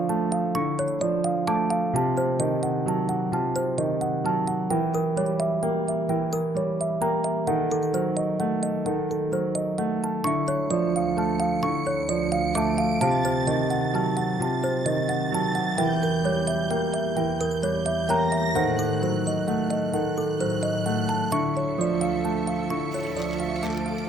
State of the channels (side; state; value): both; normal; correlation 0.72